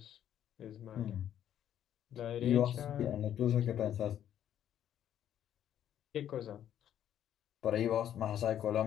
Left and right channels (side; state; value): right; quieter; 10.5 dB